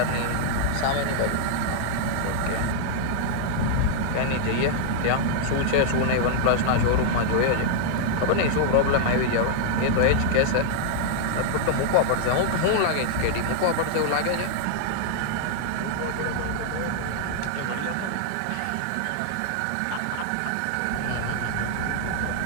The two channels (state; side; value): different; both; correlation -0.01